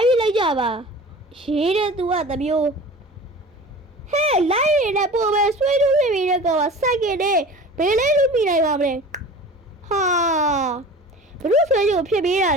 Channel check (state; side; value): normal; both; correlation 0.39